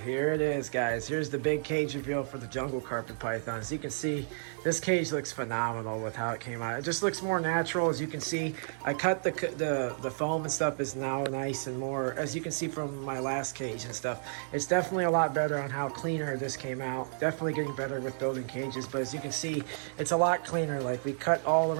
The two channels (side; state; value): left; silent; 57 dB below the other